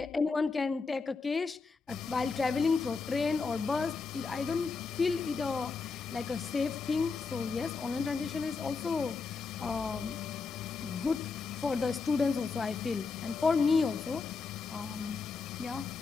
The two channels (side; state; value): right; quieter; 4.7 dB